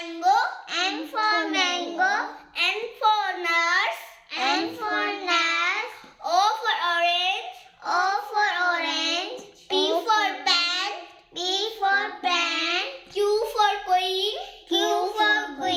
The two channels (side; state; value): both; identical; correlation 1.00